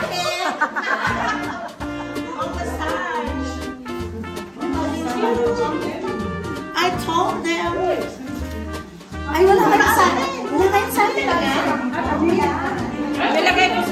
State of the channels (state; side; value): identical; both; correlation 1.00